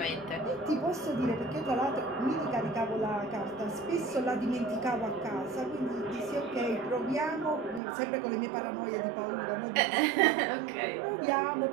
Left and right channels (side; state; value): left; drops out; at 7.8 s